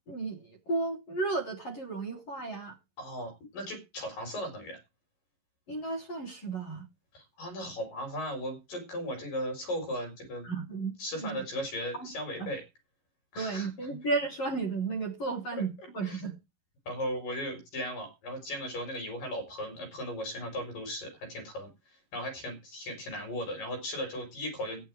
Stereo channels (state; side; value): late; right; 11 ms